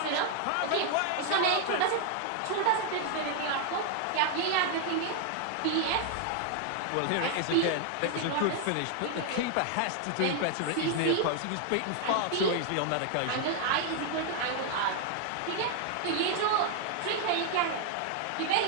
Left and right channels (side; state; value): both; different; correlation 0.00